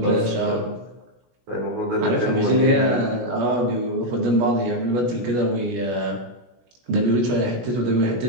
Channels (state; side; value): late; left; 16 ms